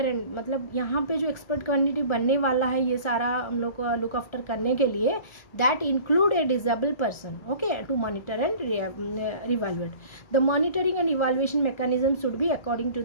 and, मतलब यहाँ पे जो एक्सपर्ट कमेटी बनने वाला है ये सारा हम लोग को लुक आफ्टर करने के लिए, that include a disable person, okay, to monitor and revaluate. The monitoring and evaluation mechanism should be according to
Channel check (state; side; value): late; right; 1.4 ms